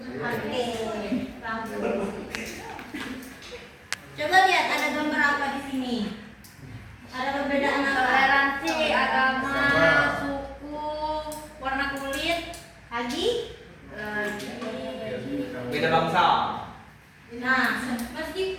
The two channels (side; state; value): both; identical; correlation 1.00